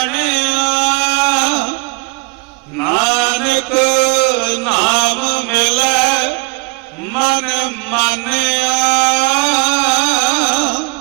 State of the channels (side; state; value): left; quieter; 28.5 dB